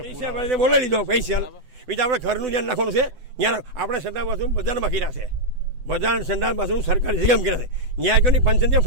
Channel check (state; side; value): late; left; 8.0 ms